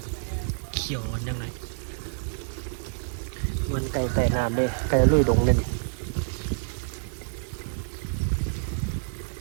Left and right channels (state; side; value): silent; left; 56 dB below the other